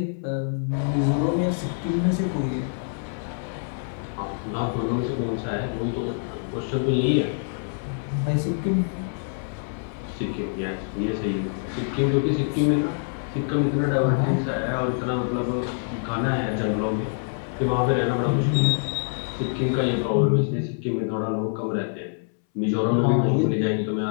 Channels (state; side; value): silent; right; 61 dB below the other